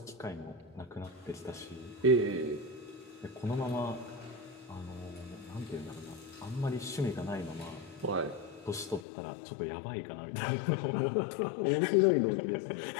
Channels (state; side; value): drops out; right; at 9.0 s